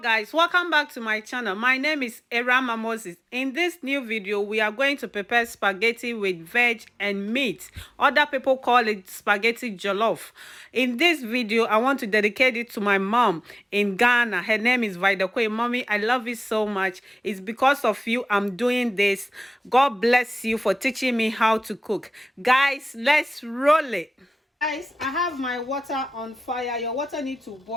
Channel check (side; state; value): both; normal; correlation 0.97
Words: welcome back to my channel. My name is Erama Moses. In this new video, we are going to prepare spaghetti with veg and meat. Other people call it spaghetti jollof. In this video, I want to dedicate it to my mom in Ghana. Her name is Vidakwe. Mommy, I love you so much. It's because of you I'm doing this. God bless you for teaching me how to cook. Guys, let's roll it. Guys, I have my water on fire. Your water needs to